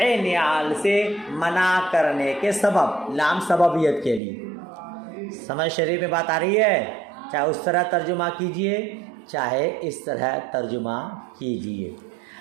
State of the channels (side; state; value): left; drops out; at 4.2 s